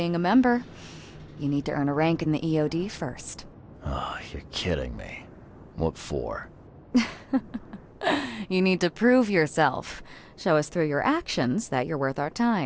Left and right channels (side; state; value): both; identical; correlation 1.00